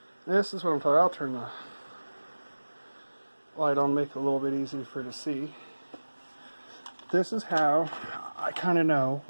this is what I'm talking. I'll turn the light on, make it a little bit easier for you to see. This is how I kind of know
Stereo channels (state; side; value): inverted; both; correlation -1.00